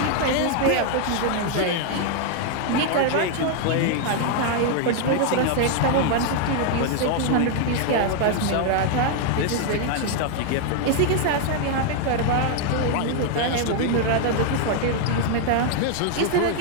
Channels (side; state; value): both; different; correlation 0.00